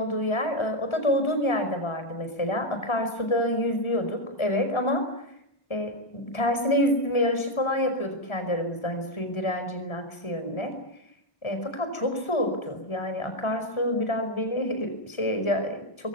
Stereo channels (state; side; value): late; right; 1.4 ms